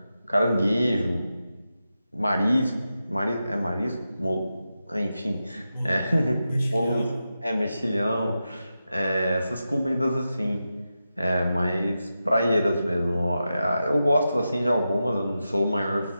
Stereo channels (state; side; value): inverted; both; correlation -0.90